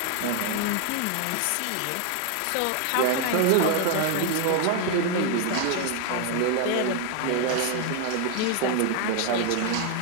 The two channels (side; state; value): both; different; correlation 0.00